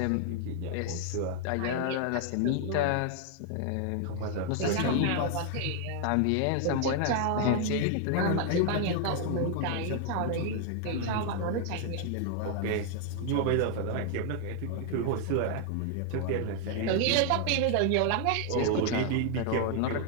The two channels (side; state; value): both; different; correlation 0.00